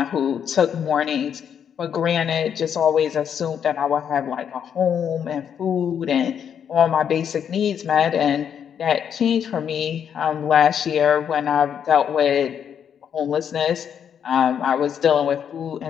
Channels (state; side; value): quieter; right; 8.2 dB